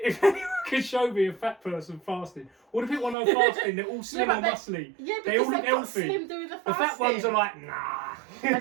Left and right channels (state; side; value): drops out; left; at 3.2 s